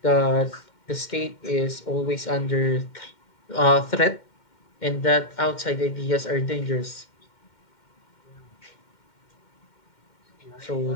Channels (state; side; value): late; right; 2.1 ms